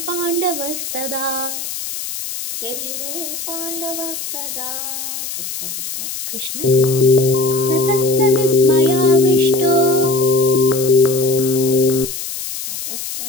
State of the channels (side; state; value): left; noise; hiss, 7 dB below the sound